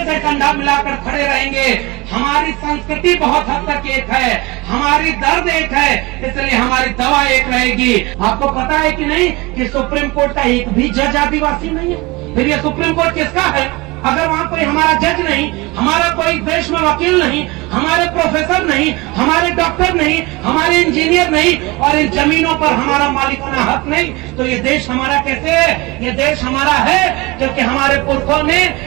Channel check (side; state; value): left; quieter; 23.6 dB